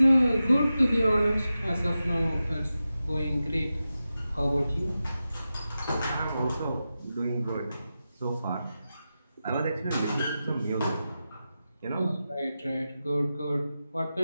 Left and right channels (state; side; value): inverted; both; correlation -0.92